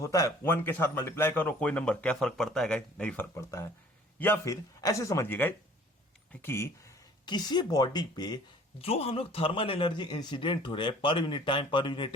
है, 1 के साथ मल्टीप्लाई करो, कोई नंबर, क्या फर्क पड़ता है गाइस? नहीं फर्क पड़ता है। या फिर ऐसे समझिएगा कि किसी बॉडी पे जो हम लोग थर्मल एनर्जी इंसिडेंट हो रहे हैं, पर unit time, per unit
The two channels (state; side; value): normal; both; correlation 0.51